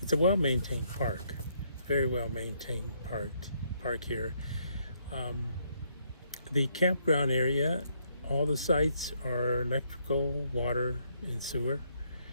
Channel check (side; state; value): both; inverted; correlation -0.72